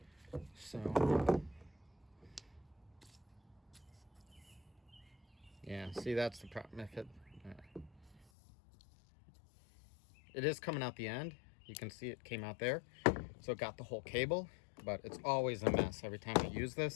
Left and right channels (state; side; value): drops out; right; at 8.2 s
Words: so yeah, so See, that's the problem. If it is coming out the end. You can see it came out there. So it got the whole cable, but it's always a mess every time I use